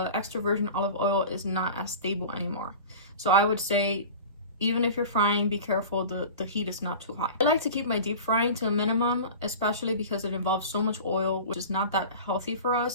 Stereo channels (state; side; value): inverted; both; correlation -0.35